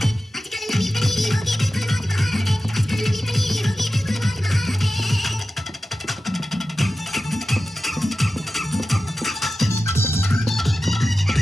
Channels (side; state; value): both; normal; correlation 0.93